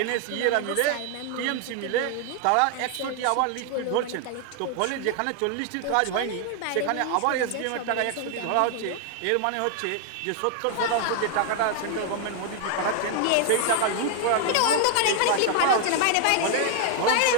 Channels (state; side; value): different; both; correlation 0.00